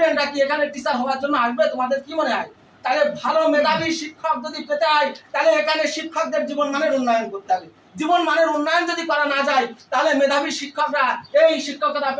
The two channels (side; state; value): both; identical; correlation 1.00